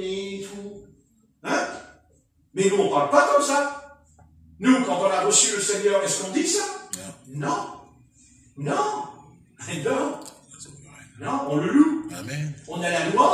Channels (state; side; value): identical; both; correlation 1.00